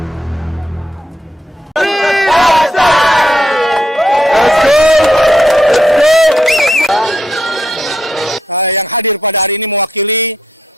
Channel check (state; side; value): normal; both; correlation 0.79